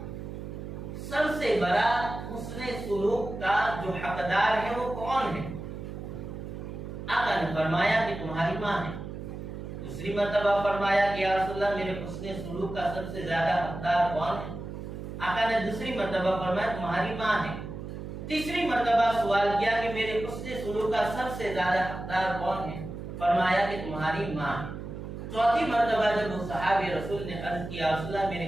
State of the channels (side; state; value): right; noise; hum, 8 dB below the sound